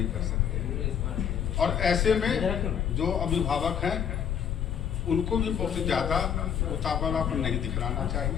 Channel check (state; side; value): quieter; right; 8.3 dB